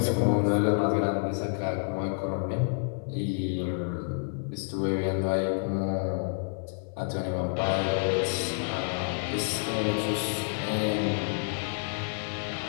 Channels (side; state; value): right; silent; 58 dB below the other